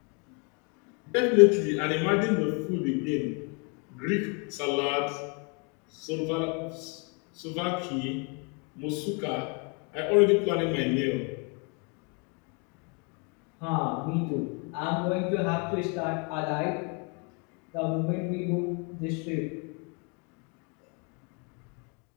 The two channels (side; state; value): right; quieter; 34.7 dB